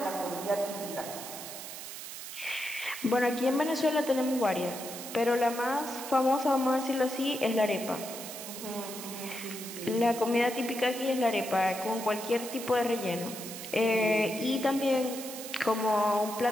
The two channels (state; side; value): noise; right; hiss, 10 dB below the sound